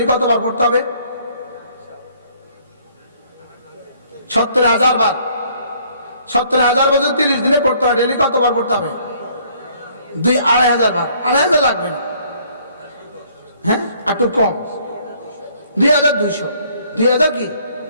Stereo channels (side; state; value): both; inverted; correlation -0.61